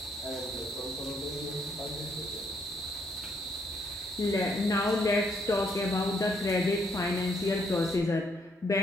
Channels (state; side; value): normal; both; correlation 0.72